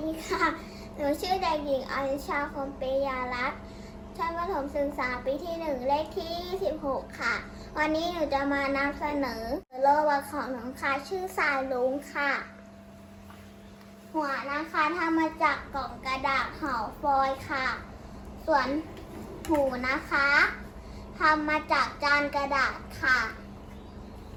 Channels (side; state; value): both; identical; correlation 1.00